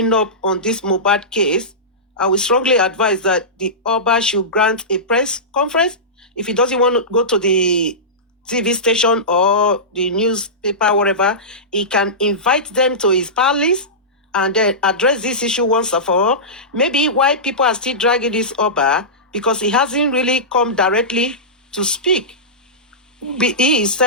up on this Mohbad case, I will strongly advise that the Oba should grant a press conference. If he doesn't want to go to the TV station or the newspaper, whatever, he can invite them to his palace and then address this issue once and for all. Maybe why people are still dragging this Oba, because he hasn't really come directly to speak. He is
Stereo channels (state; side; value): normal; both; correlation -0.17